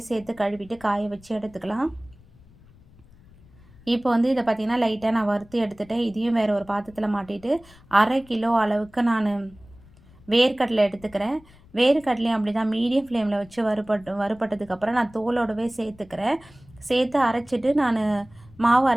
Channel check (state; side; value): noise; left; rumble, 25 dB below the sound